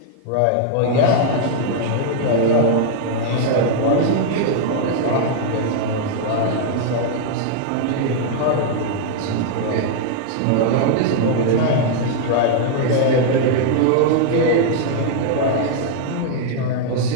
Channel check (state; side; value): different; both; correlation -0.01